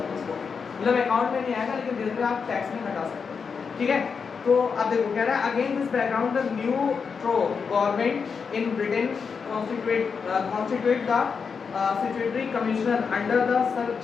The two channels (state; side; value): quieter; right; 5.8 dB